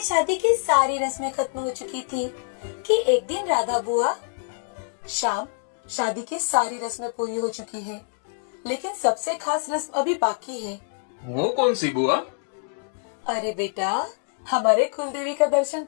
शादी की सारी रस्में खत्म हो चुकी थी कि एक दिन राधा बुआ, श्याम, शादी की सारी रस्में पूरी हो चुकी है, लेकिन सबसे खास रस्म अभी बाकी है। वो कौन सी बुआ? अरे बेटा, हमारे कुलदेवी का दर्शन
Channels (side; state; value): right; silent; digital silence